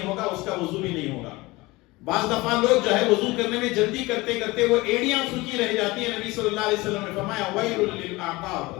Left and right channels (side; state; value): right; quieter; 21.8 dB